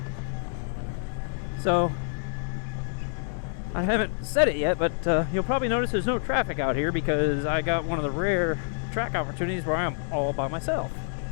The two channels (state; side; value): silent; right; digital silence